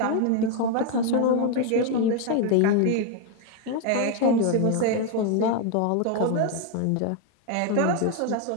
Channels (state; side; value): different; both; correlation 0.01